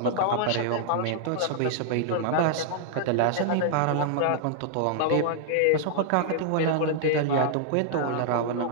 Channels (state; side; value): different; both; correlation -0.01